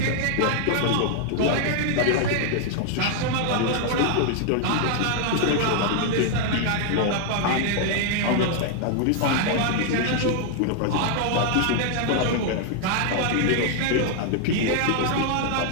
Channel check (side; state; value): both; different; correlation 0.00